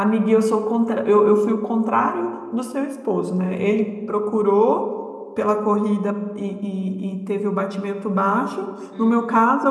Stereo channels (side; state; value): both; identical; correlation 1.00